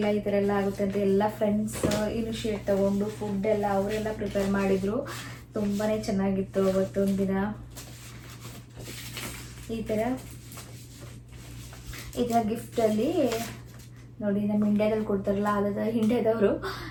ಈ ಥರ ಎಲ್ಲ ಆಗುತ್ತೆ ಅಂತ. ಎಲ್ಲ ಫ್ರೆಂಡ್ಸ್ ಇನಿಷಿಯೇಟ್ ತೊಗೊಂಡು ಫುಡ್ ಎಲ್ಲ ಅವರೆಲ್ಲ ಪ್ರಿಪೇರ್ ಮಾಡಿದರು. ತುಂಬಾ ಚೆನ್ನಾಗಿತ್ತು ಅವತ್ತೊಂದು ದಿನ. ಈ ಥರ ಗಿಫ್ಟಲ್ಲಿ ನೋಡಿ, ನಮ್ಮ ಇಂಡಿಯಾದಲ್ಲಿ ಕೊಡ್ತಾರಲ್ಲ, ಅದಾದ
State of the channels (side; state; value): both; identical; correlation 1.00